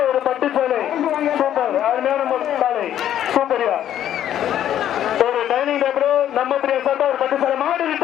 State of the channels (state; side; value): quieter; right; 11.0 dB